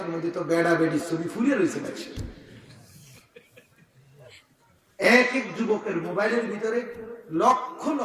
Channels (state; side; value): identical; both; correlation 1.00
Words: মধ্যে তো বেড়া বেড়ি ছবি ফুলে রয়েছে। এক এক যুবকের মোবাইলের ভিতরে লক্ষ